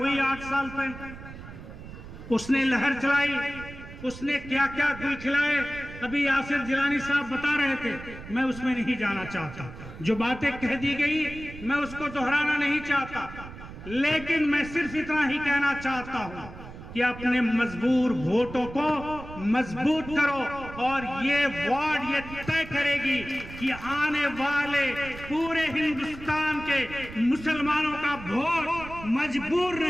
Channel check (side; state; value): right; noise; rumble, 14 dB below the sound